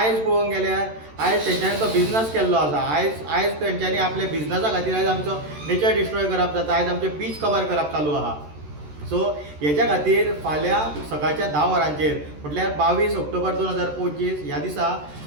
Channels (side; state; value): left; late; 13 ms